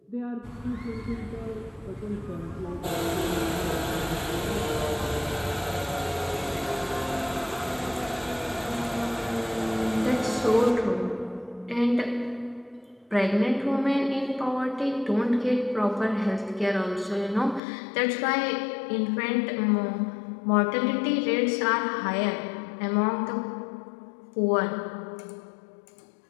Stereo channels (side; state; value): right; drops out; at 17.6 s